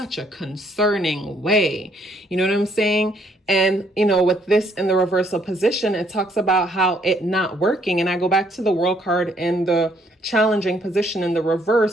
a concerning way. You know what I'm saying? And, you know, with this in the reversal position, it talks about how it not working. And I go back to the World card in the challenging position in the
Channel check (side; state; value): both; normal; correlation 0.67